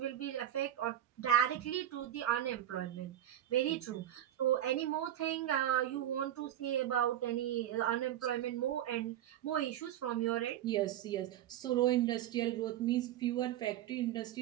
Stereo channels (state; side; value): quieter; left; 11.8 dB